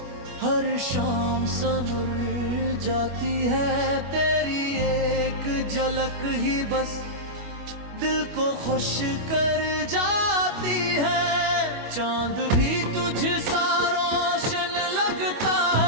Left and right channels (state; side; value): late; left; 25 ms